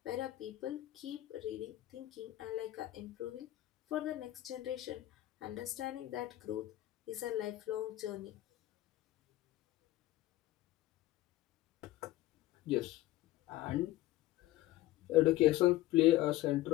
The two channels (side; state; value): right; quieter; 16.0 dB